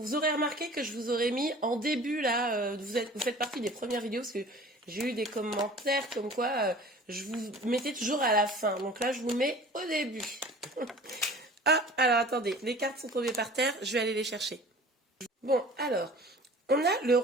aurez remarqué que je vous aurais mis en début là, vous faites partie des premières vidéos parce que j'ai eu des commentaires comme quoi je vous mettais toujours à la fin. Donc là je vous mets au début. Ah alors attendez, les cartes sont tombées par terre, je vais aller les chercher. Bon alors, on a le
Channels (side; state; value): both; normal; correlation 0.44